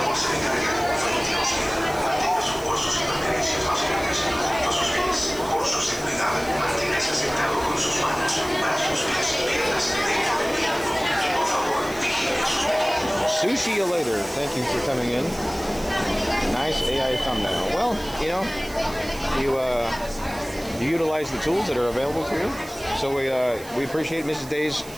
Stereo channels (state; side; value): noise; right; hiss, 18 dB below the sound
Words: Sushi you later. Thank you for coming in. Nice AI thumbnail. Well, you know, you utilize the tools that are available to you. So we appreciate Mrs. Daze.